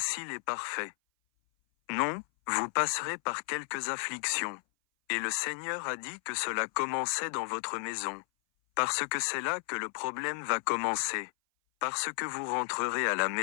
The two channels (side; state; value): right; silent; 56 dB below the other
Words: et parfait. Non, vous passerez par quelques afflictions. Et le Seigneur a dit que cela commençait dans votre maison. Parce que c'est là que le problème va commencer. Parce que vous rentrerez à la